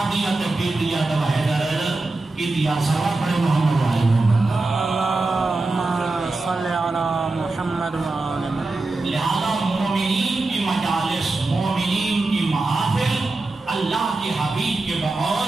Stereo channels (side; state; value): left; quieter; 3.2 dB